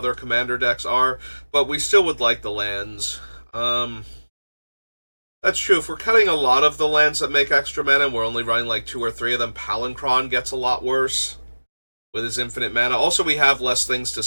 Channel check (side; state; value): both; inverted; correlation -1.00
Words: commander decks are. But we still would like the lands. That's true. If we're cutting a lot of the lands that make extra mana and we're only running like 2 or 3 of them, Palinchron gets a lot worse with his infinite mana. Also, we have less things to